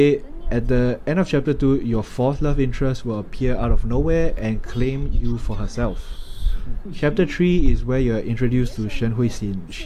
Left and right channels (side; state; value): both; identical; correlation 1.00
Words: at the end of chapter 2, your 4th love interest will appear out of nowhere and claim you for herself. Chapter 3 is where you're introduced to Shen Huixin.